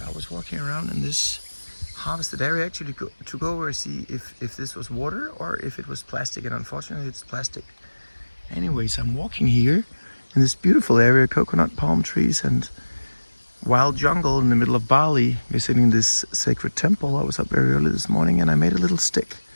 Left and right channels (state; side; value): inverted; both; correlation -1.00